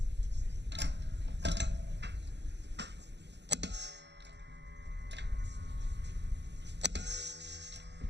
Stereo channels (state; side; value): late; left; 0.50 ms